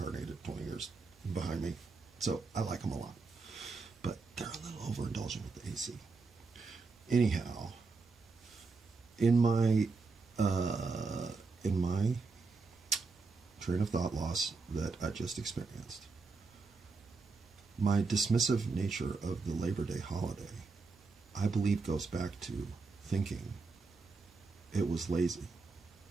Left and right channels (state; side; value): quieter; left; 4.2 dB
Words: 20 years behind me. So I like them a lot. But they're a little overindulgent with the AC. Anyhow, in my train of thought loss that I just experienced, my dismissive nature of the Labor Day holiday, I believe, goes back to thinking it was lazy